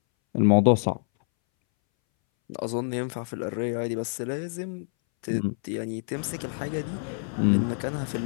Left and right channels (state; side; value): silent; right; 60 dB below the other